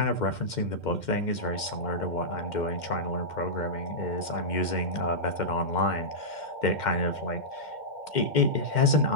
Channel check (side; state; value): right; late; 2.1 ms